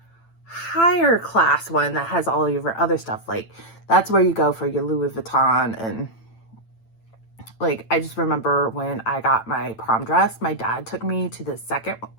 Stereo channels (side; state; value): right; late; 8.9 ms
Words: higher class one that has all your other stuff. Like that's where you go for your Louis Vuitton. And like, I just remember when I got my prom dress, my dad took me to the